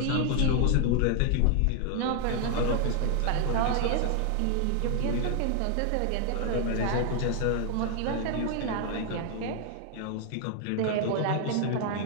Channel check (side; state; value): both; different; correlation 0.00